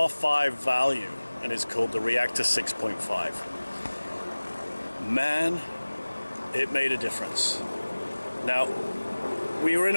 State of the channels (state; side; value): inverted; both; correlation -1.00